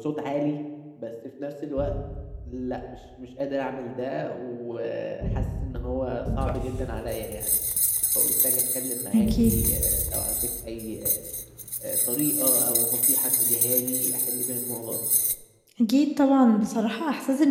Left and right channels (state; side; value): identical; both; correlation 1.00